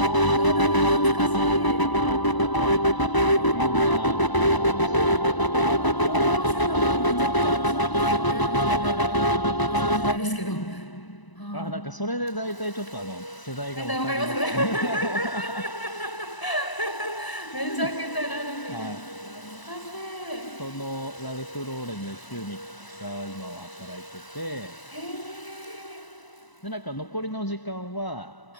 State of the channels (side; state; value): right; late; 1.0 ms